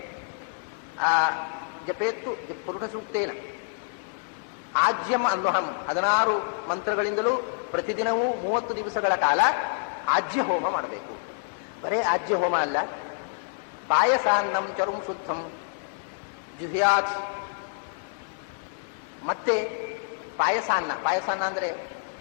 ಆ ಜಪೇತ್ತು ಪುರುಷ ಸೂಕ್ತೇನ ಆಜ್ಯಂ ಅನ್ವಹಂ, 16 ಮಂತ್ರಗಳಿಂದಲೂ ಪ್ರತಿದಿನವೂ 30 ದಿವಸಗಳ ಕಾಲ ಆಜ್ಯ ಹೋಮ ಮಾಡಬೇಕು. ಬರೇ ಆಜ್ಯ ಹೋಮ ಅಲ್ಲ, ಪಾಯಸಾನ್ನಂ ಚರುಂ ಶುದ್ಧಂ ಜುಹ್ಯಾತ್. ಮತ್ತೆ ಪಾಯಸಾನ್ನ ಅಂದರೆ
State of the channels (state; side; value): silent; right; digital silence